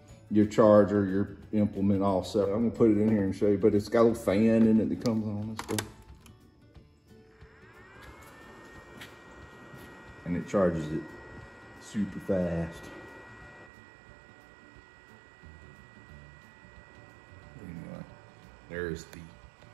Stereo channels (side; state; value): left; drops out; at 13.7 s